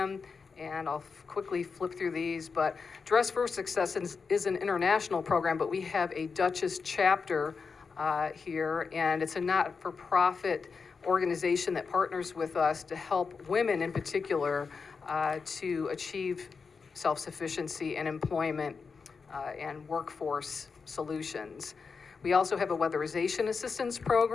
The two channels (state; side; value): quieter; right; 5.1 dB